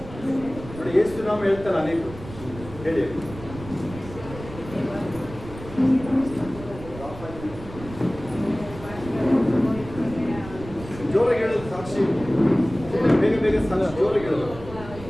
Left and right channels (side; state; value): right; noise; rumble, 14 dB below the sound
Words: ನೋಡಿ. ಯೇಸು ನಾಮ ಹೇಳ್ತಾರೆ ಅನೇಕರು. ಹೇಳಿ ಜೋರಾಗಿ ಹೇಳೋದು ಸಾಕ್ಷಿ. ಬೇಗ ಬೇಗ ಸಾಕ್ಷಿ ಜೋರಾಗಿ ಹೇಳೋದು.